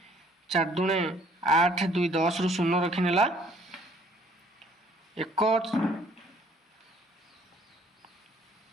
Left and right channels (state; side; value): normal; both; correlation 0.59